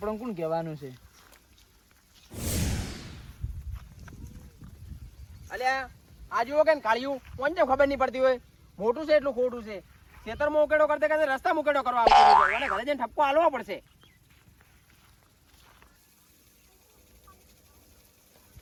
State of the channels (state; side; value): identical; both; correlation 1.00